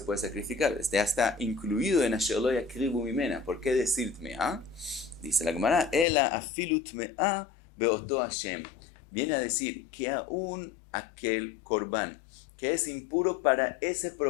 puede sacrificar? Ya está incluido en Asher lo yakrivu mimena. ¿Por qué decir tme'a? Dice la Gemara, Ela afilu tme'a beoto Hashem. Viene a decir que aún aquel korban que es impuro para ese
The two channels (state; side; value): drops out; right; at 6.1 s